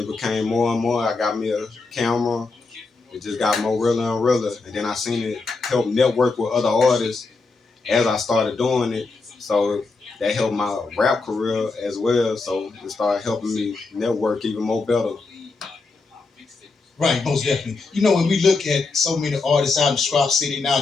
became more and more. I got me a camera. It just got more realer and realer. And then I seen it help network with other artists as I started doing it. So that helped my rap career as well. So it started helping me network even more better. Right, most definitely. When we look at so many artists out in Sprout City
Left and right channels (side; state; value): right; quieter; 4.0 dB